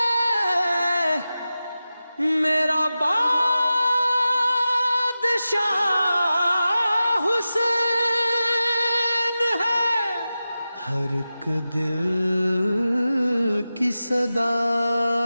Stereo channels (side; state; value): both; inverted; correlation -0.94